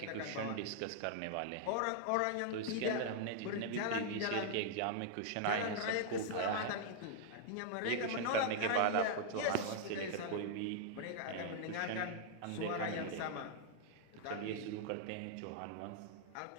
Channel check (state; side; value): different; both; correlation -0.01